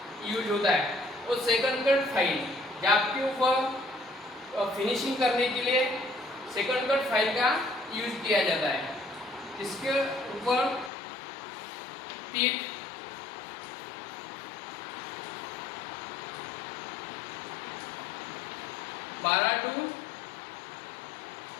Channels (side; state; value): right; drops out; at 10.9 s